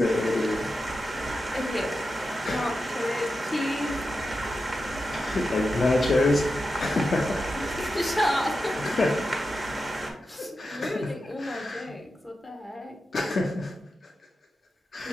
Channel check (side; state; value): both; normal; correlation 0.90